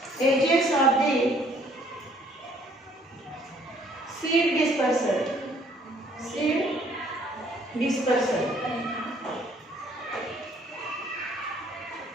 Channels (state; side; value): normal; both; correlation 0.61